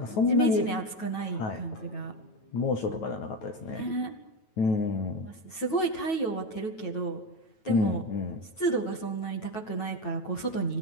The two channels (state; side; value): late; right; 9.2 ms